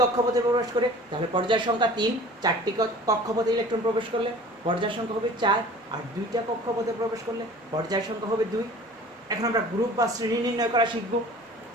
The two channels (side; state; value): both; normal; correlation 0.44